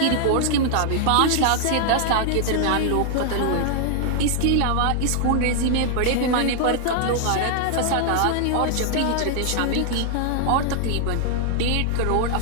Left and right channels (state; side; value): different; both; correlation -0.01